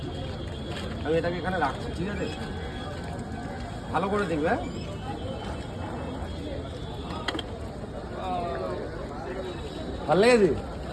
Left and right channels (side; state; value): both; identical; correlation 1.00